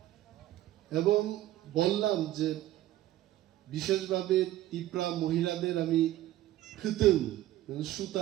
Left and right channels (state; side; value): quieter; left; 14.7 dB